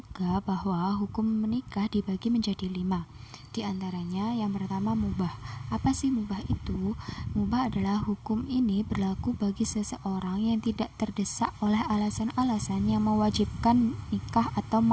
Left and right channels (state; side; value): identical; both; correlation 1.00